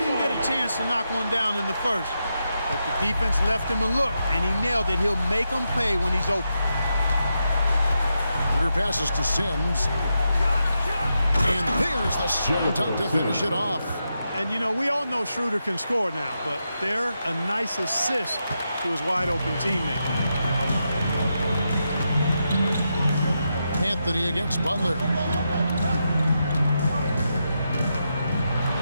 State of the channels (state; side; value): inverted; both; correlation -0.85